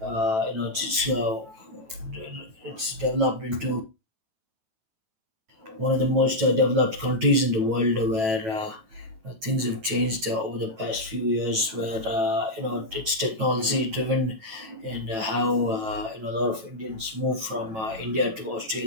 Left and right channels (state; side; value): late; left; 9.0 ms